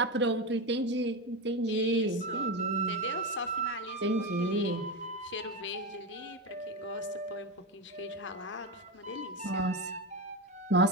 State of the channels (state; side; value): normal; both; correlation 0.16